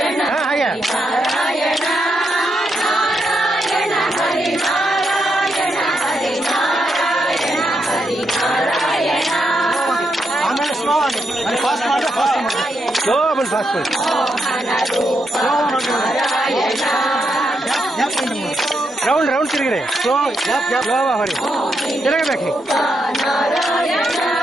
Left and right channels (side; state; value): both; normal; correlation 0.81